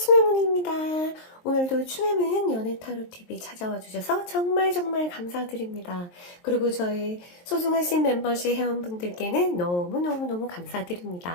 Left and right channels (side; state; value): right; late; 23 ms